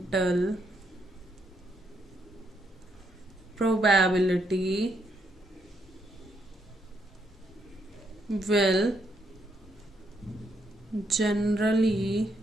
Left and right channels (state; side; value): normal; both; correlation 0.76